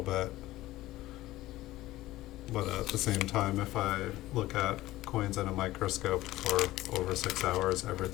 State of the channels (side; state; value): right; quieter; 16.7 dB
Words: bit. But at the same time, if I look at coins in a microscope for over 6 hours,